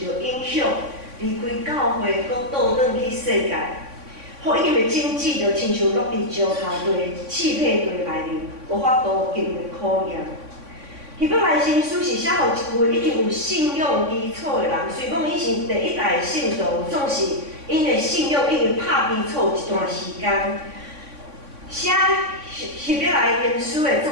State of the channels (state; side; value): late; left; 3.6 ms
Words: 到影响，离开教会，搁倒转去世界。福音的经济就亲像落伫石头堆、气配堆内面，无法度经过考验。希伯来新书是写互一群已经有信仰基础的人，虽讲伊是第一代的信徒，总是因的信仰已经拍基础一段时间。写希伯来原书的作